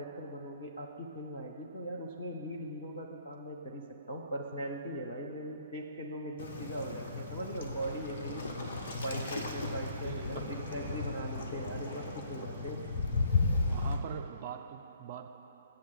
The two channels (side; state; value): both; inverted; correlation -0.62